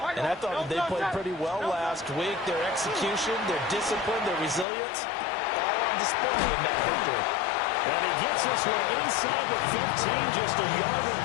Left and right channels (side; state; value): right; drops out; at 4.7 s